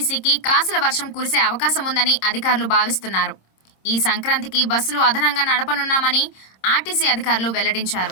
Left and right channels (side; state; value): right; late; 26 ms